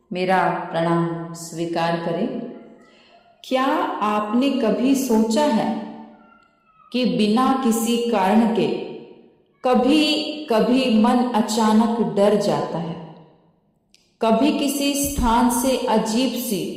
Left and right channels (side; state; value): both; identical; correlation 1.00